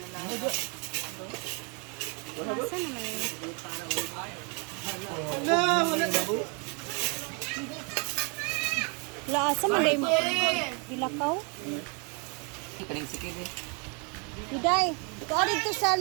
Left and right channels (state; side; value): quieter; left; 34.9 dB